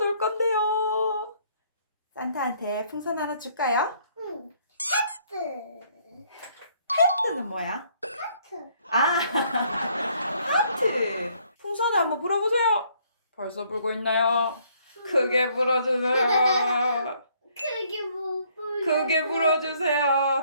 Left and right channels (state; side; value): inverted; both; correlation -0.65